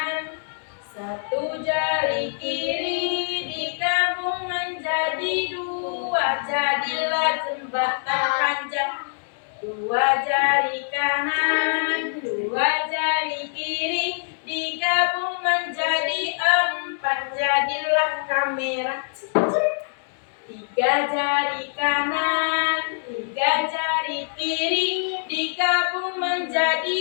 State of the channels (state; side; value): silent; right; digital silence